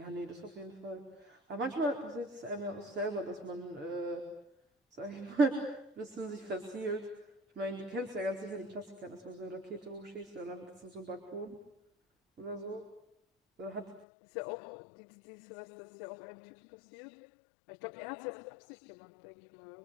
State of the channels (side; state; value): right; drops out; at 14.1 s